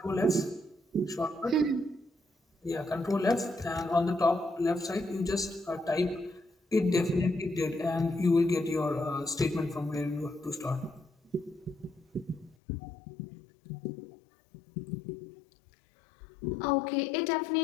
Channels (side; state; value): right; drops out; at 12.6 s